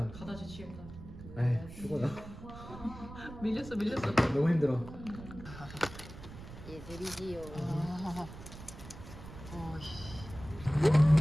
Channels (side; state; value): right; noise; rumble, 14 dB below the sound